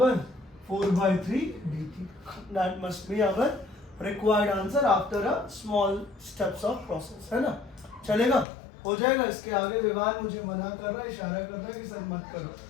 4/3 dt। That must be our required answer after a small steps of process, है ना। चलेगा, हो जाएगा। इसके आगे विवान मुझे मना कर रहा है, इशारा कर रहा है कि सर मत करो,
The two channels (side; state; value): right; drops out; at 8.5 s